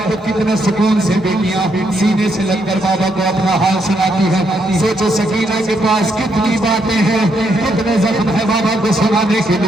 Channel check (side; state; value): both; normal; correlation 0.76